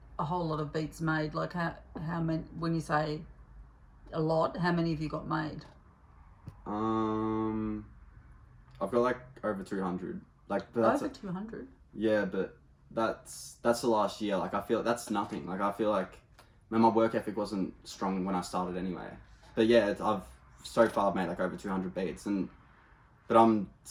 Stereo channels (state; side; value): identical; both; correlation 1.00